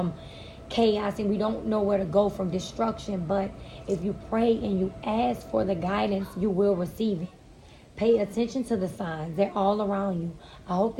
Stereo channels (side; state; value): both; identical; correlation 1.00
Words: chaos and we don't know where to go from destruction. But if you pray and you ask for the guidance, you will receive it. Pay attention to the signs. They're all around you. I hope